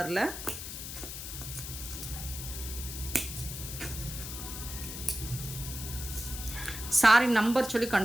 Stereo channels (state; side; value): noise; left; hiss, 8 dB below the sound